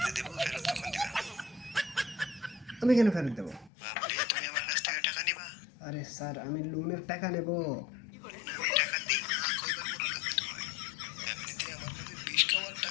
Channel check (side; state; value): right; drops out; at 3.7 s